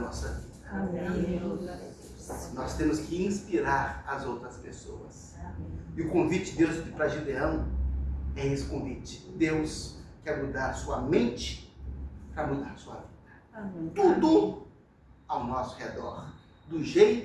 vida. Amém. Nós temos que inspirar as outras pessoas. E o convite de Deus para Gideão é esse convite. Deus quer mudar a sua mente para mudar a sua vida. Amém. Tudo ao nosso redor, do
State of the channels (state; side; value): identical; both; correlation 1.00